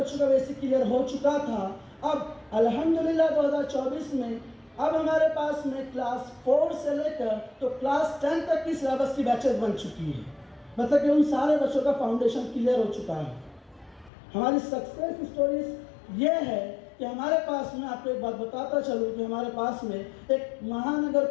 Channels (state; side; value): drops out; right; at 14.1 s